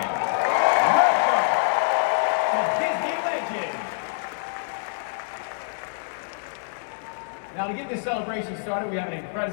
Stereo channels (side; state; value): right; silent; digital silence